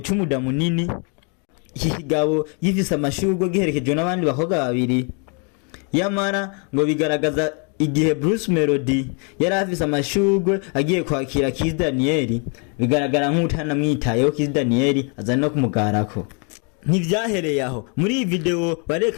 cy'umuda munini, ikigabo gifise amashurwe giherekejwe n'abandi bakobwa babiri. Yamara ngo bigaragaza igihe Bruce Melodie yari afise amashurwe agiye kwakira Kiss Daniel, bigaragara nk'utana mwitayeho Kiss Daniel aza no kumugarako. Ntivyahereye aho, muri iyi video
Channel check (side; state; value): right; quieter; 37.2 dB